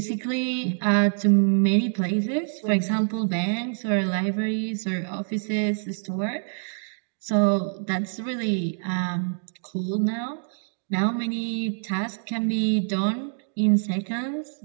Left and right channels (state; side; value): silent; left; digital silence